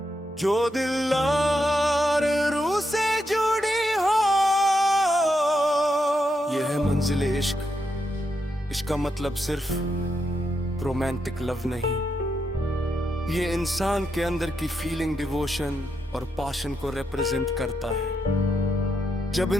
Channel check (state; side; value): normal; both; correlation 0.82